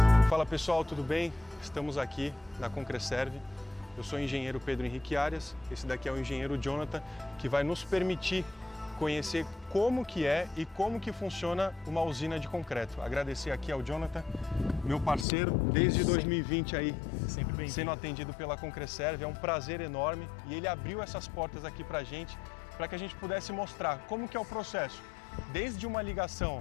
Fala pessoal, tudo bem? Estamos aqui na Concreserve. Eu sou o engenheiro Pedro Henrique Arias, esse daqui é o engenheiro Jonathan, que vai nos permitir conhecer como que é e como que funciona uma usina de concreto. Agradecer aqui ao Jonathan, meu parceiro, desde 2020 aí, sendo atendido pela Concreserve. É um prazer enorme e ele abriu essas portas aqui pra gente, para que a gente pudesse mostrar como que é o processo, desde uma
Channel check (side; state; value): right; drops out; at 15.2 s